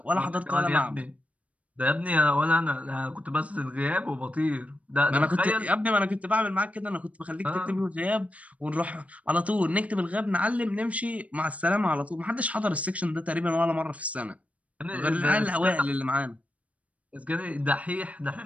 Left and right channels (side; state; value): left; late; 0.067 ms